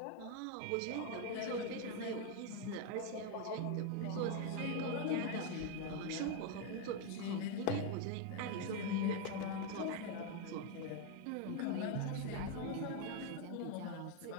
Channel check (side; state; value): both; different; correlation 0.02